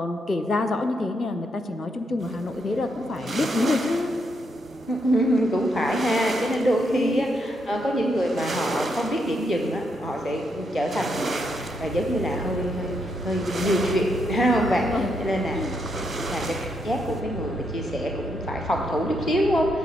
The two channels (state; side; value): normal; both; correlation 0.78